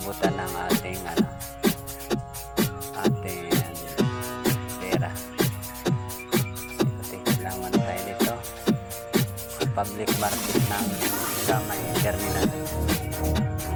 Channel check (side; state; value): both; identical; correlation 1.00